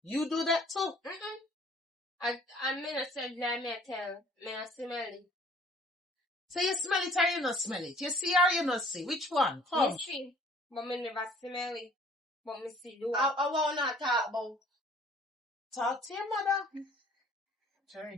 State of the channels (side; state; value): both; normal; correlation 0.54